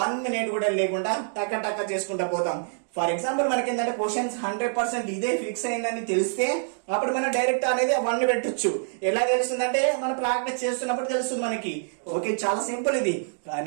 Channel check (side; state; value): left; silent; digital silence